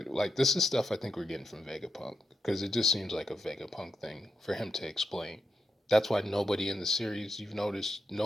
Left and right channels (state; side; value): normal; both; correlation 0.85